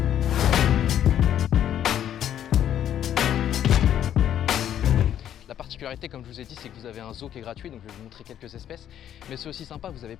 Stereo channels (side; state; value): right; quieter; 10.5 dB